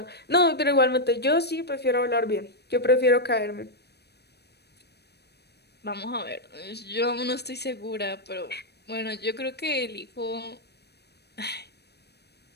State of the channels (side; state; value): right; late; 0.48 ms